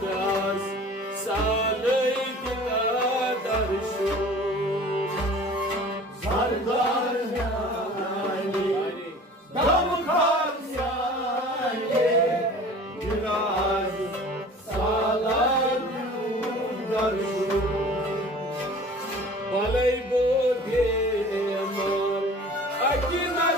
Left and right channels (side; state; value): both; normal; correlation 0.44